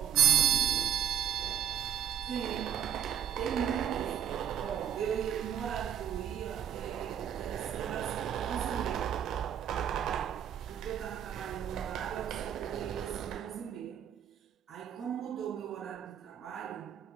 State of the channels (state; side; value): quieter; left; 9.1 dB